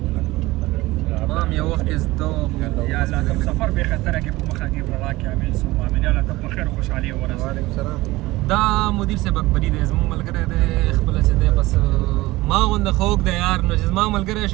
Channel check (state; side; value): quieter; left; 19.3 dB